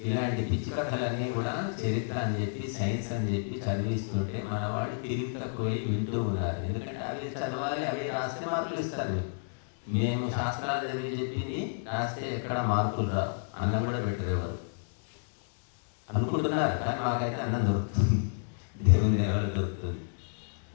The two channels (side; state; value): right; silent; digital silence